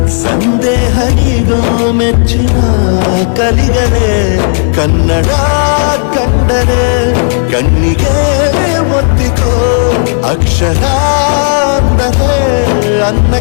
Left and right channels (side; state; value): right; silent; digital silence